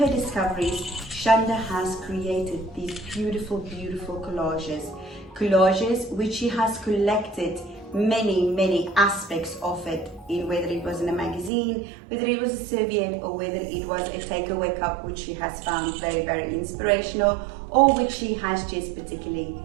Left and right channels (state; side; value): drops out; left; at 11.5 s